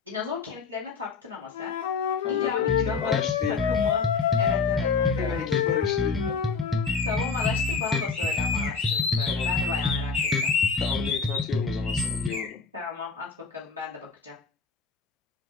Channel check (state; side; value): quieter; right; 4.9 dB